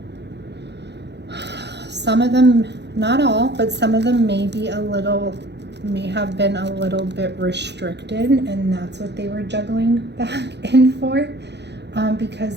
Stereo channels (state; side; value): late; left; 0.50 ms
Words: Some of them, not all, but some of them may have been a little bit restricted, and that's what they were juggling back and forth, because